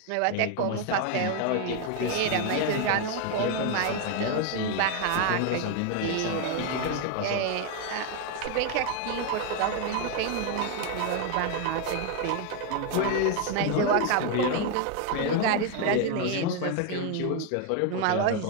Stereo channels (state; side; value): different; both; correlation 0.01